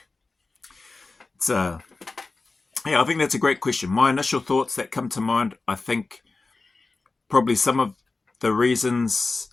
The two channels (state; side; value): quieter; right; 3.7 dB